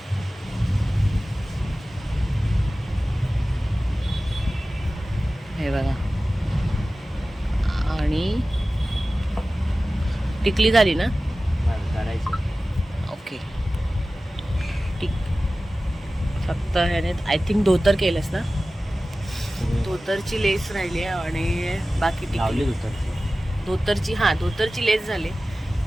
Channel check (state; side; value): normal; both; correlation 0.96